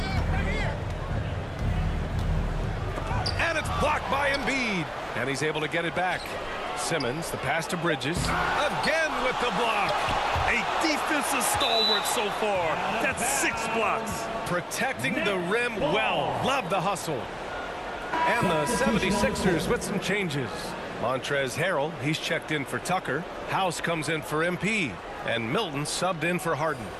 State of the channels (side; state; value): both; identical; correlation 1.00